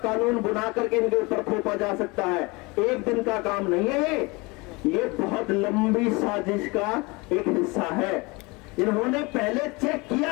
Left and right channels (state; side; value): quieter; right; 25.7 dB